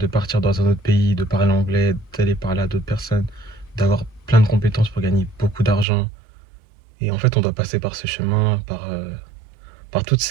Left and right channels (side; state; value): left; drops out; at 5.9 s